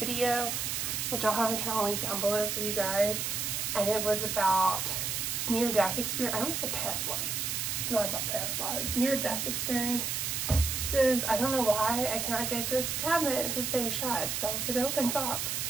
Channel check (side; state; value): right; noise; hiss, 1 dB below the sound